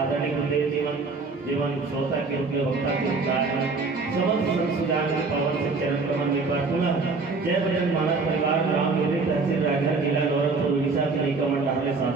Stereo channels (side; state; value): left; quieter; 4.1 dB